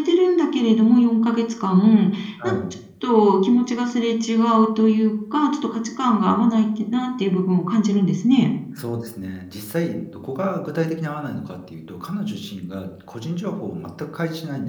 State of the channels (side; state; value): both; identical; correlation 1.00